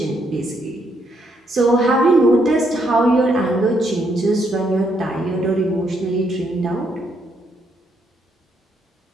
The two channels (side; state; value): both; normal; correlation 0.75